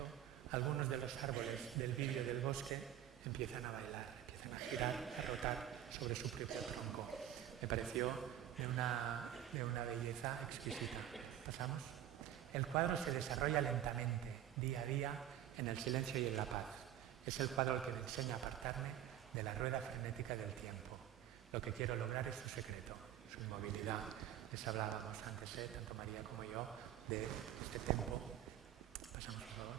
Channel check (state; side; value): quieter; left; 11.2 dB